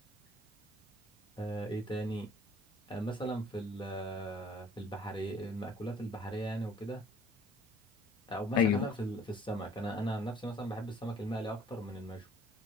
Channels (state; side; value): normal; both; correlation 0.56